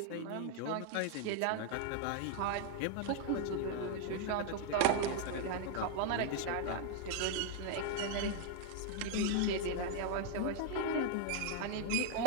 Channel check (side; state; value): both; different; correlation 0.00